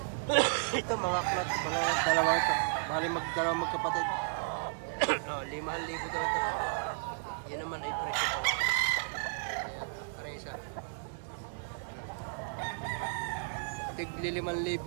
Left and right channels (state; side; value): silent; left; 55 dB below the other